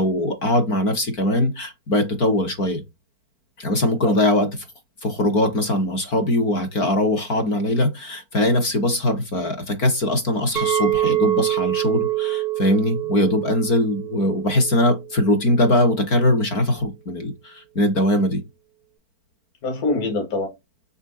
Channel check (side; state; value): right; late; 4.5 ms